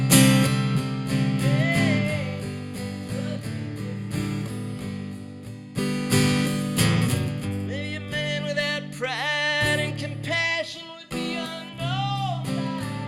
Maybe a man without pride and compassion would be unknown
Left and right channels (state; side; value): identical; both; correlation 1.00